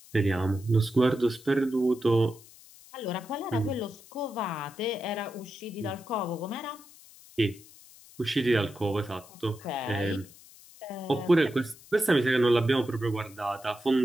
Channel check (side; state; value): left; noise; hiss, 22 dB below the sound